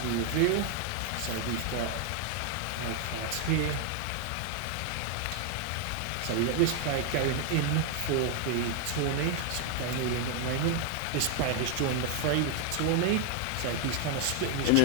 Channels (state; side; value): different; both; correlation 0.00